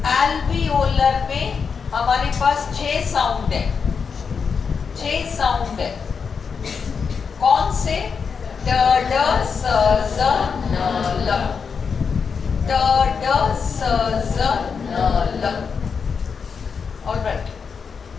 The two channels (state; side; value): quieter; right; 5.9 dB